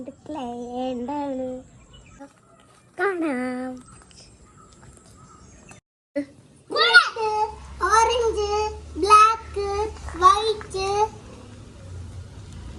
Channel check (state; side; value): identical; both; correlation 1.00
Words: കാണാം. Orange, black, white,